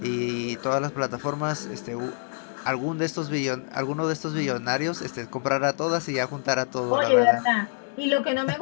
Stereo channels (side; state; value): right; silent; digital silence